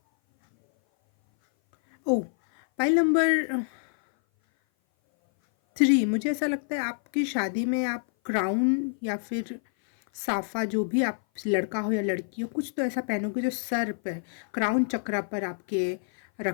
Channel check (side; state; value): right; silent; 57 dB below the other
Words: ओ पाइल नंबर 3, मुझे ऐसा लगता है आपकी शादी में आप क्राउन या फिर साफा, जो भी आप लड़का हो या लड़की हो, कुछ तो ऐसा पहनोगे जो सर पर क्राउन चक्रा पर आपके